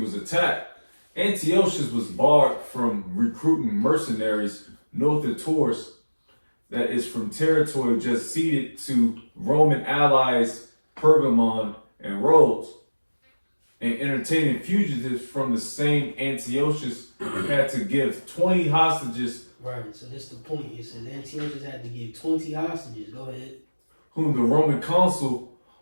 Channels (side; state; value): both; inverted; correlation -1.00